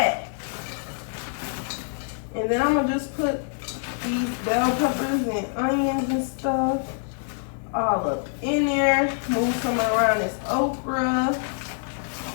And then I'm gonna just put these bell peppers and onions and stuff all up in there. Move some around this okra.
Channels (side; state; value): right; silent; 61 dB below the other